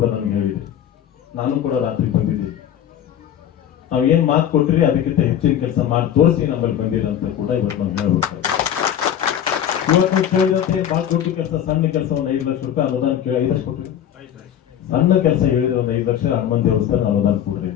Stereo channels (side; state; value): right; quieter; 10.0 dB